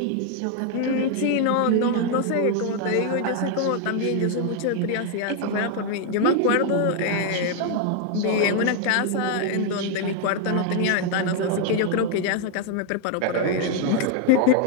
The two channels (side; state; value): both; different; correlation 0.00